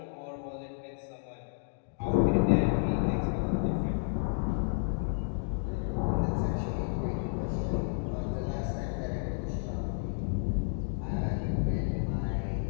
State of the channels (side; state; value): right; silent; digital silence